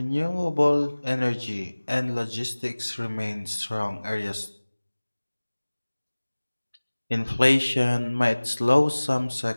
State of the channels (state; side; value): inverted; both; correlation -1.00